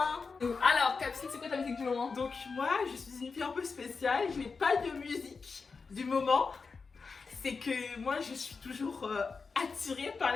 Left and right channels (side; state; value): right; quieter; 4.8 dB